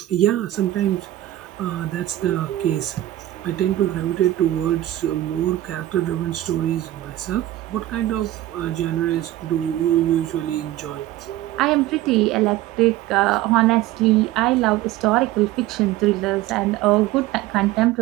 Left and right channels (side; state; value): left; quieter; 14.8 dB